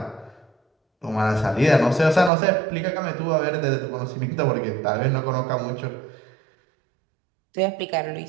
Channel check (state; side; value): drops out; left; at 2.3 s